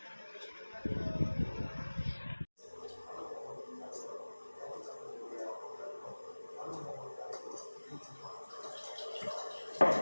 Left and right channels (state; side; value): inverted; both; correlation -1.00